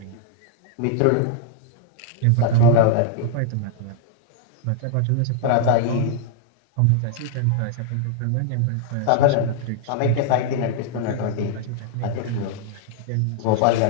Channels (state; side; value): different; both; correlation 0.00